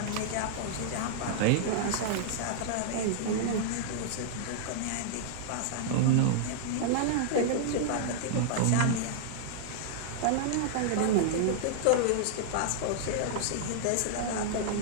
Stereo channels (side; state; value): both; different; correlation -0.01